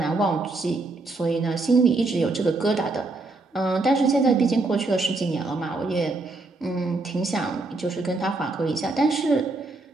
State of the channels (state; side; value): quieter; left; 3.3 dB